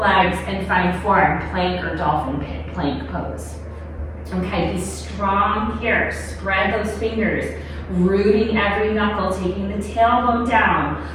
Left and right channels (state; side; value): identical; both; correlation 1.00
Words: legs and find forearm plank or dolphin plank pose. Okay, be strong here. Spread those fingers. Rooting every knuckle, taking the tailbone down,